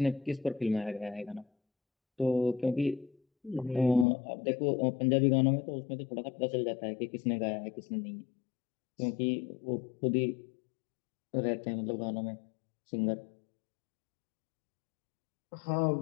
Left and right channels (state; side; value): drops out; right; at 4.0 s